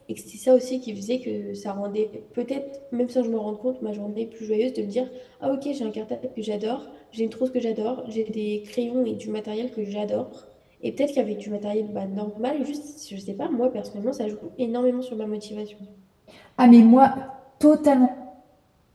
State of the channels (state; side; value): identical; both; correlation 1.00